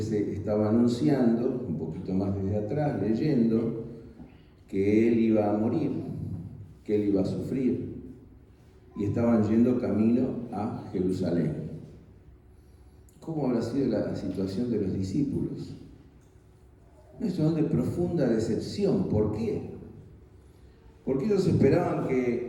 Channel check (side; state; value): both; identical; correlation 1.00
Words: estaba anunciando, un poquito más desde atrás, leyendo, que Él iba a morir, que Él iba a sufrir, y estaban yendo camino a Jerusalén. ¿Cómo habrá sido la situación de los discípulos? Una situación de profunda decepción. ¿Por qué? Porque ellos esperaban